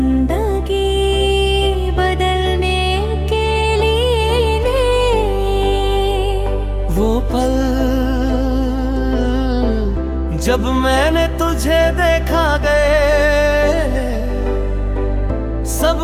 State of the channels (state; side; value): identical; both; correlation 1.00